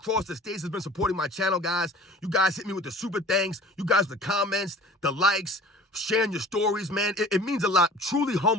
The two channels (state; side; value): normal; both; correlation 0.45